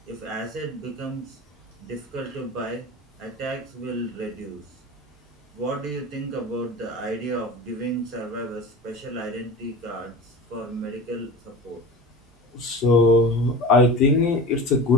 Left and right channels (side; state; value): both; normal; correlation 0.32